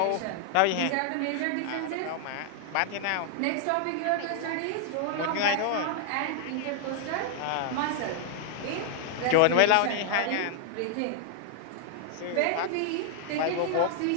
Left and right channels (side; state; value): both; different; correlation 0.00